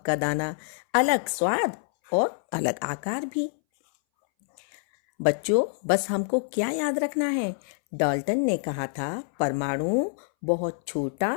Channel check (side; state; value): right; silent; 61 dB below the other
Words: का दाना, अलग स्वाद और अलग आकार भी। बच्चों, बस हमको क्या याद रखना है? डाल्टन ने कहा था परमाणु बहुत छोटा,